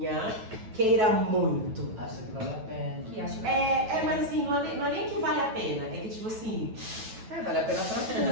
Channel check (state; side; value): late; left; 9.1 ms